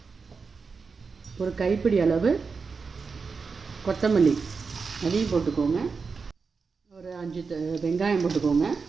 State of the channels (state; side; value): quieter; left; 5.0 dB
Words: ஒரு கைப்பிடி அளவு கொத்தமல்லி அதையும் போட்டுக்கோங்க. ஒரு 5 வெங்காயம் போட்டுக்கோங்க.